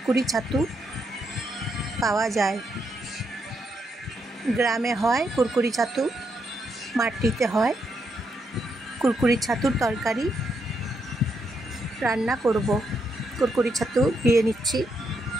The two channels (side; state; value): both; normal; correlation 0.79